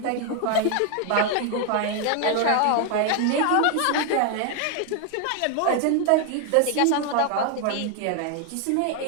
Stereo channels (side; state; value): both; different; correlation 0.00